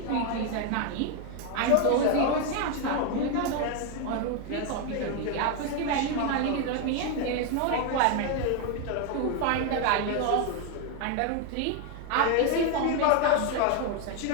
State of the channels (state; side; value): different; both; correlation 0.01